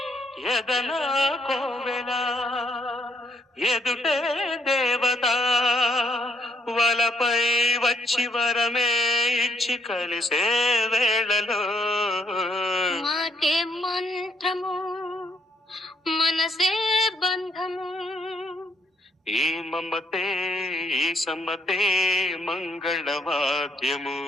ఎదనా కోవెల ఎదుటే దేవత వలపై వచ్చి వరమే ఇచ్చి కలిసే వేళలో మాటే మంత్రము మనసే బంధము ఈ మమతే ఈ సమ్మతే మంగళవాద్యము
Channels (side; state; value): both; normal; correlation 0.71